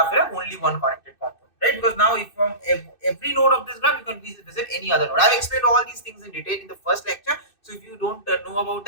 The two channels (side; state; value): right; late; 2.6 ms